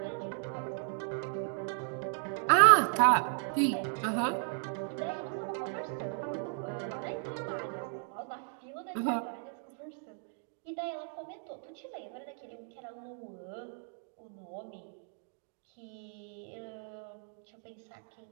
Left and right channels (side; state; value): left; silent; 54 dB below the other